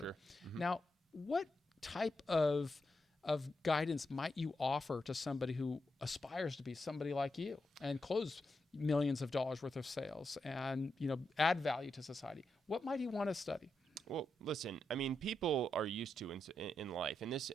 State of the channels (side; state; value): both; normal; correlation 0.85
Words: Sure. Mm-hmm. Now, what type of guidance might you offer to somebody who aspires to be somebody like you and close millions of dollars worth of sales and add value to society? What might he want to study? Well, listen, I mean, people are used to in life, and this